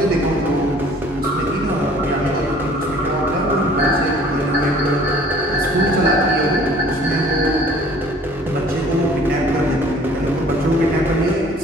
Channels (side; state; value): both; normal; correlation 0.52